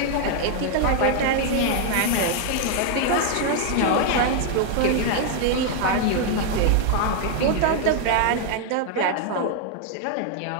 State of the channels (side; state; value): both; different; correlation 0.00